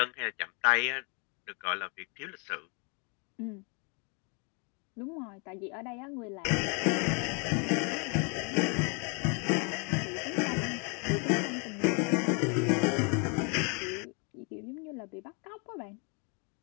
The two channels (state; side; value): quieter; right; 35.5 dB